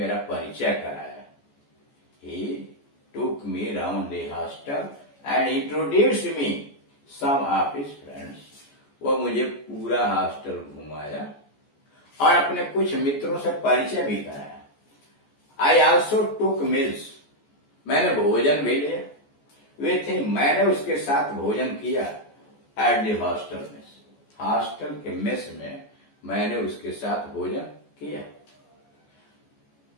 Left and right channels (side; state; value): right; late; 14 ms